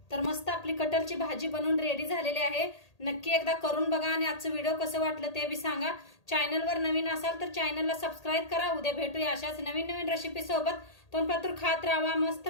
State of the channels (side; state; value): right; late; 1.8 ms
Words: तर मस्त आपली कटरची भाजी बनवून रेडी झालेली आहे. नक्की एकदा करून बघा आणि आजचं व्हिडिओ कसं वाटलं ते बी सांगा. चॅनलवर नवीन असाल तर चॅनलला सबस्क्राईब करा. उद्या भेटूया अशाच नवीन रेसिपी सोबत. तोपर्यंत खात राहा, मस्त